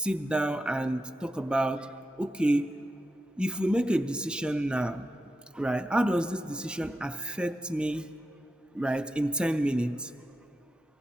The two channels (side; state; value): both; normal; correlation 0.89